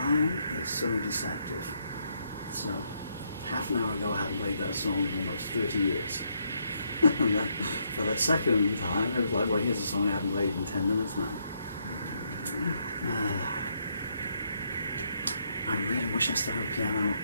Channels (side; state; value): both; inverted; correlation -0.75